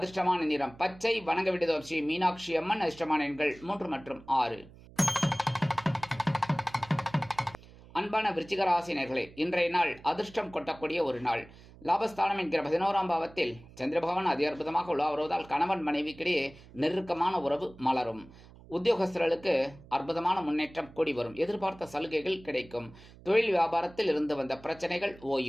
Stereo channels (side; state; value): right; noise; hum, 21 dB below the sound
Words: நிறம் பச்சை. வணங்க வேண்டியது ஸ்ரீ மீனாட்சி அம்மன். அதிர்ஷ்டமான எண்கள் 3 மற்றும் 6. அன்பான விருச்சிக ராசினர்களே, இன்றைய நாள் அதிர்ஷ்டம் கொட்டக்கூடிய ஒரு நாள். லாபஸ்தானம் என்கிற 11ஆம் பாவத்தில் சந்திர பகவான் அதி அற்புதமாக உலா வருவதால் கணவன் மனைவிக்கிடையே நெருக்கமான உறவு மலரும். உத்தியோகஸ்தர்களுக்கு அற்புதமான முன்னேற்றம் கூடி வரும். எதிர்பார்த்த சலுகைகள் கிடைக்கும். தொழில் வியாபாரத்தில் இருந்து வந்த பிரச்சனைகள்